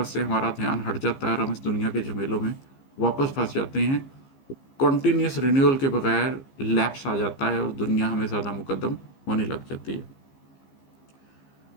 سے ہمارا دھیان ہٹ جاتا ہے اور ہم اس دنیا کے جھمیلوں میں واپس پھنس جاتے ہیں۔ کنٹینیوس رینیول کے بغیر لیپس آ جاتا ہے اور دنیا ہمیں زیادہ مقدم ہونے لگ جاتی ہے۔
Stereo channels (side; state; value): right; late; 15 ms